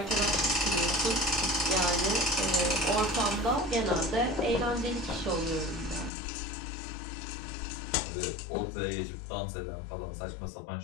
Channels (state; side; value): drops out; right; at 6.1 s